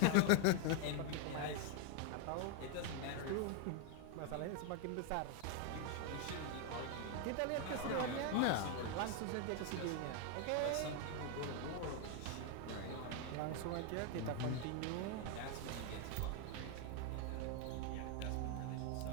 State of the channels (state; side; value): different; both; correlation 0.01